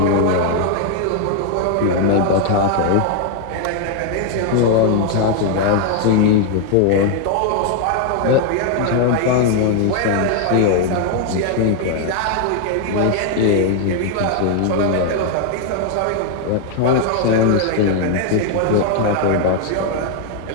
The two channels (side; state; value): both; different; correlation 0.00